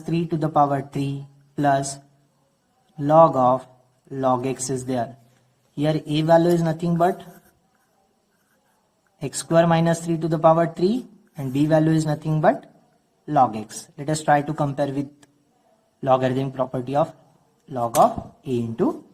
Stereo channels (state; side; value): identical; both; correlation 1.00